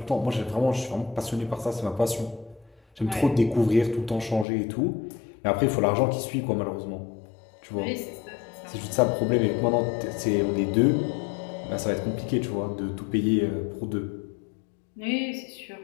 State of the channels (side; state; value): right; drops out; at 4.5 s